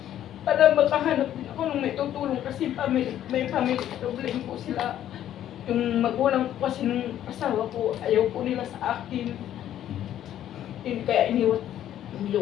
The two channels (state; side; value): quieter; right; 11.4 dB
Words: Para makahanap din ako ng may tutulong kasi may family problem po sila. Yung magulang ko kasi nung asawa ko, ayaw po nila sa akin. Kaya iniwan